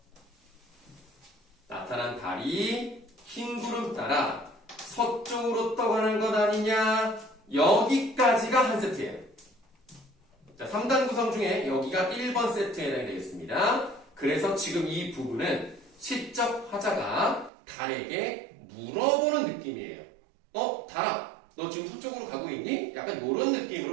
나타난 달이 흰 구름 따라 서쪽으로 떠가는 것 아니냐? 여기까지가 한 세트예요. 자, 3단 구성 중에 여기가 1번 세트에 해당이 되겠습니다. 그 그래서 지금 이 부분은 시적 화자가 달에게 물어보는 느낌이에요. 달아, 너 지금 서쪽으로 가고 있니? 약간 이런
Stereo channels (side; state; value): left; drops out; at 17.5 s